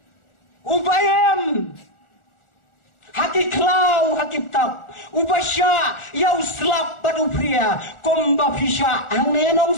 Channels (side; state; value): right; late; 1.4 ms